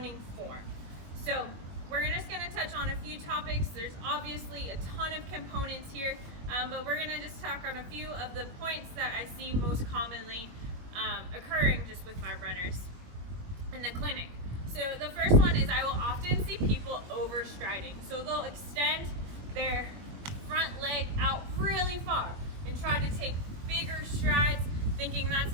form. So we're just going to touch on a few topics. There's obviously a ton of components here, but we're going to just talk on a few of the points that I see most commonly occurring just with my runners in the clinic. So the first one is I will often see people overstriding. So they'll extend their front leg out really far and try to take bigger strides, thinking that's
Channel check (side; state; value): left; late; 21 ms